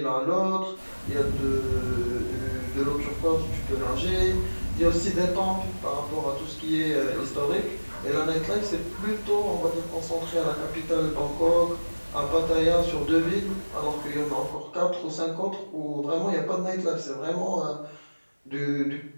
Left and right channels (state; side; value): inverted; both; correlation -1.00